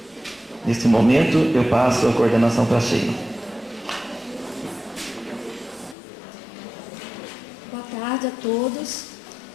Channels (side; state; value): right; drops out; at 6.0 s